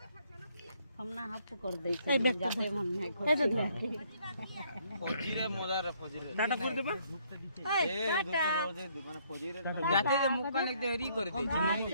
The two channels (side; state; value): both; inverted; correlation -0.67